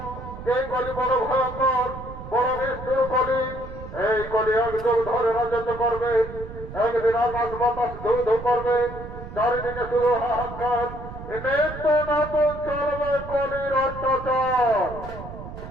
এই কলি বড় ভয়ঙ্কর বড় নিষ্ঠুর কলি এই কলি একযুগ ধরে রাজত্ব করবে একদিন আকাশ বাতাস ধু ধু করবে চারিদিকে শুধু হাহাকার নিত্য নতুন চলবে কলির অত্যাচার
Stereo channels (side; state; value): right; noise; rumble, 12 dB below the sound